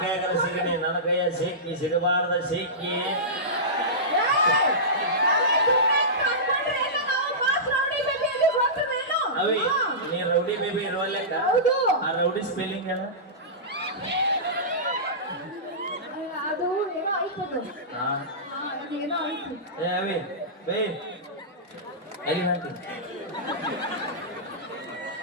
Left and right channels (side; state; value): both; normal; correlation -0.18